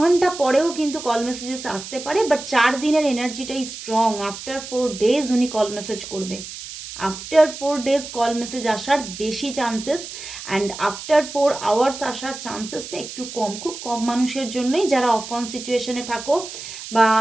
পরেও কিন্তু কল মেসেজেস আসতে পারে, বাট 4 দিনের এনার্জিটাই স্ট্রং। আফটার 4 ডেজ উনি কল মেসেজ করবে, আফটার 4 ডেজ কল মেসেজ আসার বেশি চান্সেস, অ্যান্ড আফটার 4 আওয়ার্স আসার চান্সেসটা একটু কম, খুব কম মানুষের জন্যই, যারা অফ অন সিচুয়েশনে থাকো বা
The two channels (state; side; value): noise; right; hiss, 11 dB below the sound